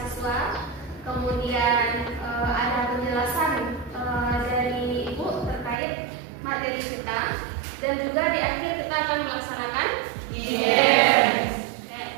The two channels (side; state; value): left; drops out; at 5.8 s